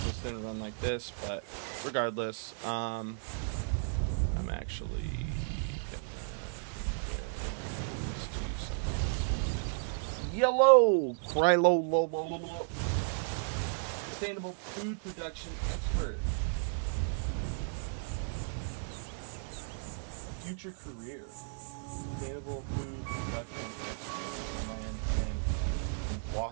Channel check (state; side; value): silent; left; 55 dB below the other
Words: this didn't run like this, but regardless, I'm actually yellow Krylo sustainable food production expert. Future career. Sustainable food production expert. Land and